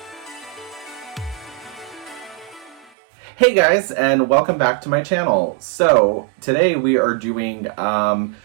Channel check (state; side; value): drops out; left; at 2.9 s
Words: Hey guys, and welcome back to my channel. So today we are doing